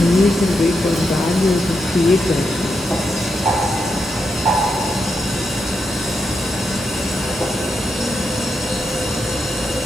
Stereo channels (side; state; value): both; normal; correlation 0.84